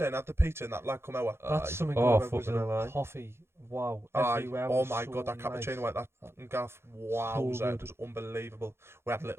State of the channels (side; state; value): left; late; 0.12 ms